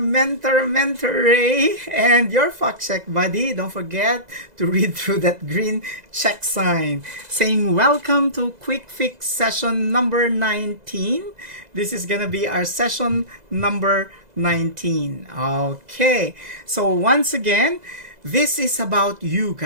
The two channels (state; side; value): late; left; 2.0 ms